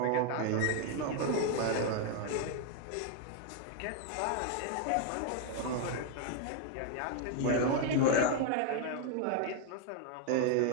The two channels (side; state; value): both; different; correlation 0.00